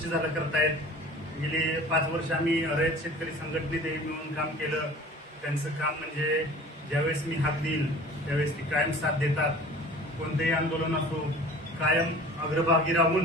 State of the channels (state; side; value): normal; both; correlation 0.44